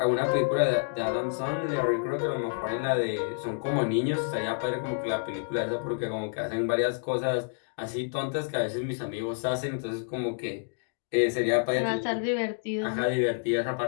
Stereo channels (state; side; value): silent; right; digital silence